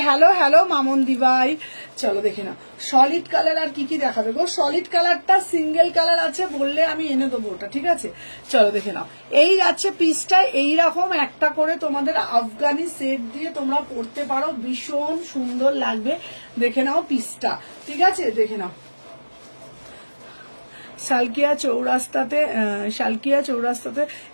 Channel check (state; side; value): inverted; both; correlation -1.00